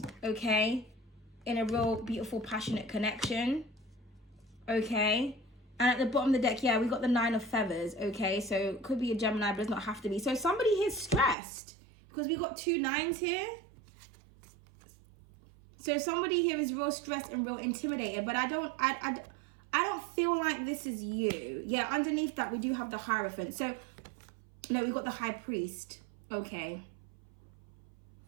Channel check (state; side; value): drops out; left; at 11.4 s